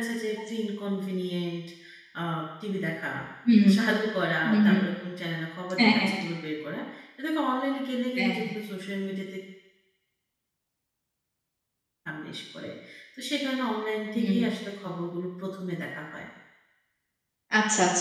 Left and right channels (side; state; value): both; identical; correlation 1.00